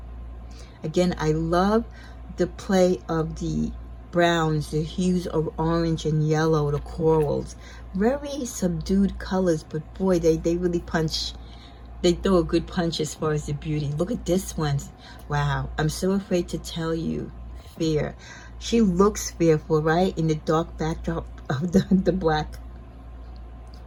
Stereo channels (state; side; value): identical; both; correlation 1.00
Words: Again, I love the play of the browns, the hues of orange and yellow, the corals. Very subdued colors, but boy, they really punch. They throw a good punch as far as the beauty. Look at this one. Wow, I'm so afraid to tell you. Fear. She looks fearful, right? In the dark backdrop of the black.